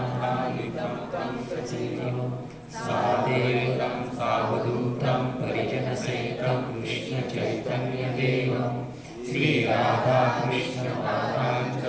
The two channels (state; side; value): identical; both; correlation 1.00